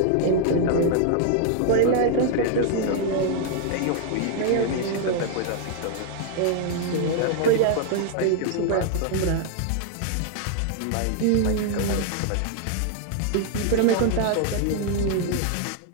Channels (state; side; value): different; both; correlation 0.00